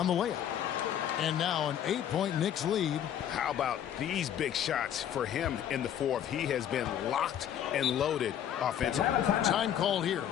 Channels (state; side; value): quieter; right; 10.0 dB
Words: the layup. And now an 8-point Knicks lead. How about these big shots for him in the fourth? He has been locked and loaded offensively. Time called here.